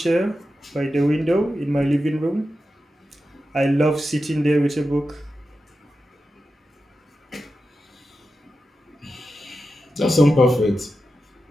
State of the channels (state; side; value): normal; both; correlation 0.91